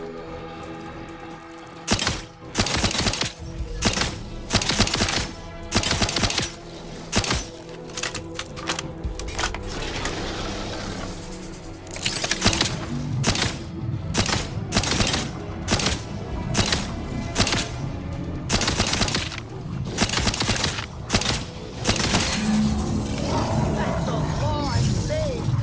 That's the law I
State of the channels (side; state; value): both; identical; correlation 1.00